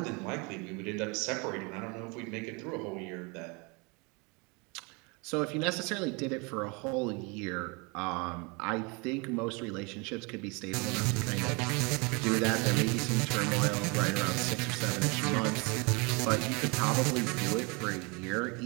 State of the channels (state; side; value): quieter; left; 29.8 dB